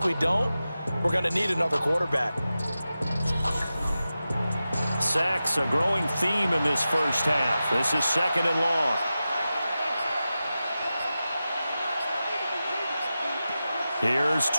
we don't, we're going to need another quarterback. Sacks, a growing theme in this first half. This is 2nd and long. Here's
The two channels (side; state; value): both; inverted; correlation -0.93